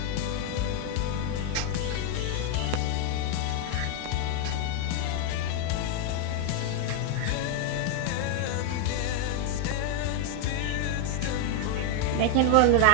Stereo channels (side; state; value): both; different; correlation 0.01